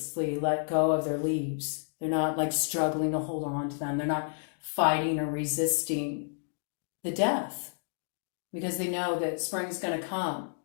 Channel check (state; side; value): silent; right; digital silence